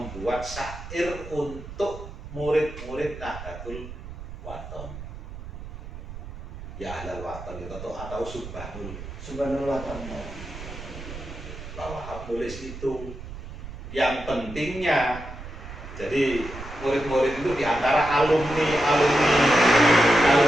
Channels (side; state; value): right; noise; rumble, 11 dB below the sound